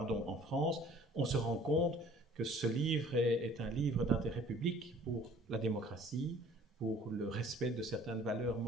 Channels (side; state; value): both; normal; correlation 0.52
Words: France, on se rend compte que ce livre est un livre d'intérêt public pour la démocratie, pour le respect de certaines valeurs